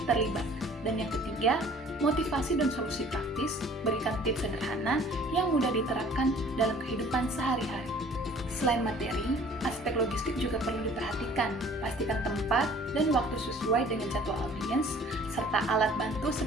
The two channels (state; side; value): normal; both; correlation 0.52